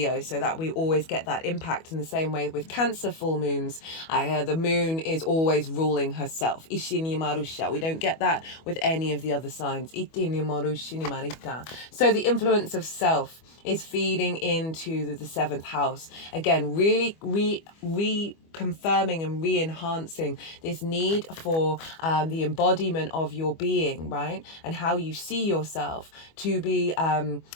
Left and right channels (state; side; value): late; right; 25 ms